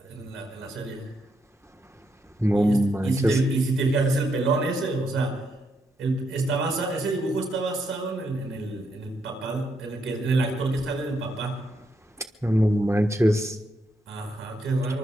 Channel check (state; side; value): normal; both; correlation 0.79